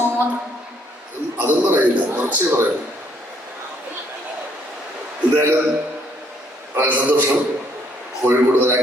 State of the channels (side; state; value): both; normal; correlation 0.67